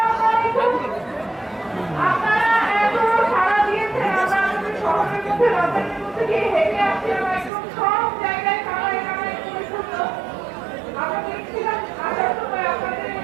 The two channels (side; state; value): left; drops out; at 7.5 s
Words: আপনারা এত সারা দিয়েছেন, আমরা আমাদের শহরের মধ্যে রাজধানীর মধ্যে গিয়ে হেঁটে আসছিলাম, একদম সব জায়গায় কানায় কানায় পরিপূর্ণ। আমরা দেখছিলাম আসার সময় আপনাদের